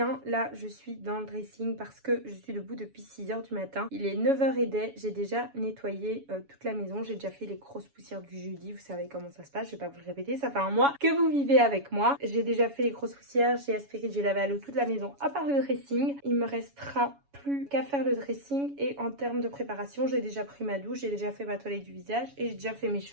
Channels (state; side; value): late; left; 7.1 ms